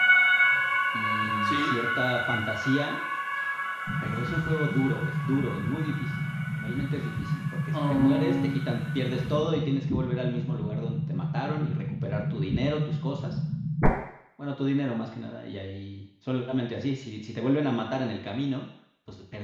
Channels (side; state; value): both; identical; correlation 1.00